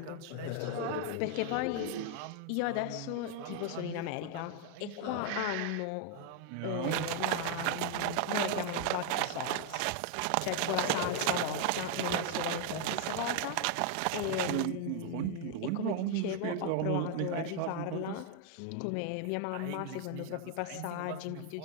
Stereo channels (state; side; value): different; both; correlation 0.01